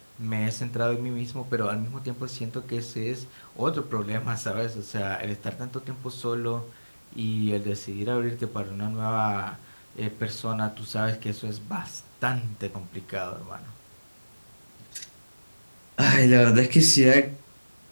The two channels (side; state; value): both; inverted; correlation -1.00